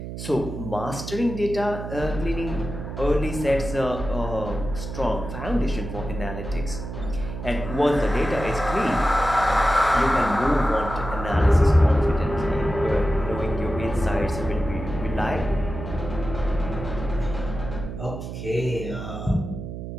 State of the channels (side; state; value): right; noise; hum, 8 dB below the sound